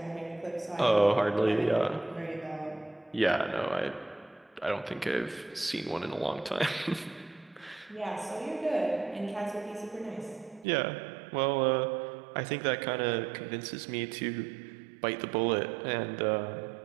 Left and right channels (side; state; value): left; drops out; at 10.7 s